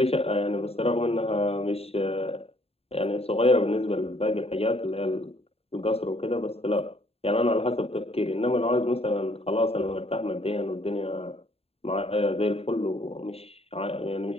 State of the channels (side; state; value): right; late; 0.29 ms